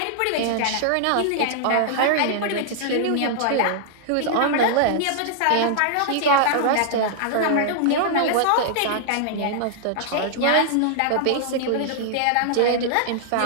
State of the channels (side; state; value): both; different; correlation -0.01